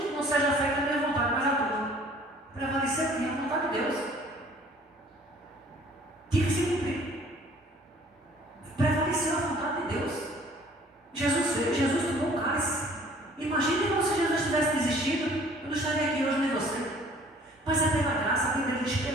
não seja feita a minha vontade, mas a tua. Prevalecer aqui a vontade de Deus. Tinha que se cumprir. Prevaleceu a vontade de Deus. Jesus veio, Jesus tomou o cálice. Imagine como se Jesus tivesse desistido, eu não estaria aqui hoje nem você. Mas é pela graça, a Bíblia diz:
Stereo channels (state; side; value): normal; both; correlation 0.54